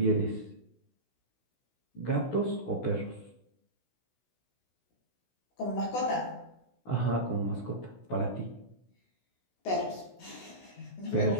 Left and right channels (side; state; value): right; late; 16 ms